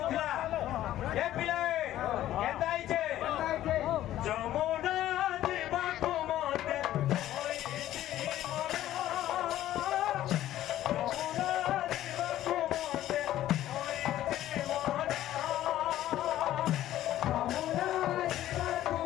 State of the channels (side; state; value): right; quieter; 13.3 dB